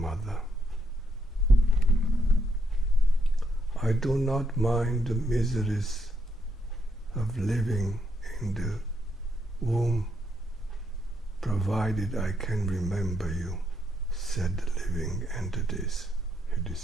I do not mind the miseries of living in the womb, provided I can remember you, said the living entities. He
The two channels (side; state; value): both; normal; correlation 0.77